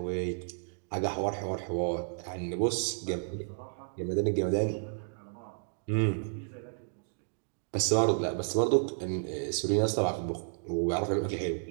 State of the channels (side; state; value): left; silent; digital silence